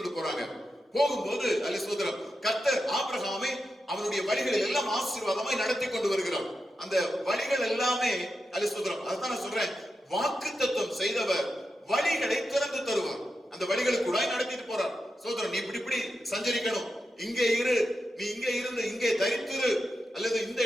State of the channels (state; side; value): normal; both; correlation 0.89